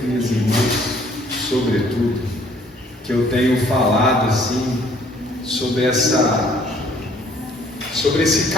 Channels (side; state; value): both; normal; correlation 0.59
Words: minhas irmãs, sobretudo, que eu tenho falado assim sobre esse